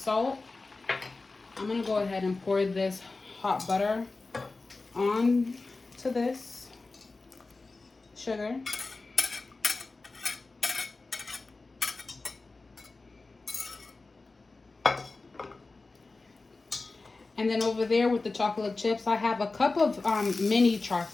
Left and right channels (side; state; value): right; quieter; 3.6 dB